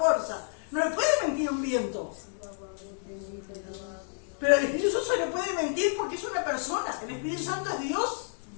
no le puede mentir a un viento. Pero al Espíritu Santo se le puede mentir porque es una persona. El Espíritu Santo es Dios,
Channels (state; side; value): silent; right; digital silence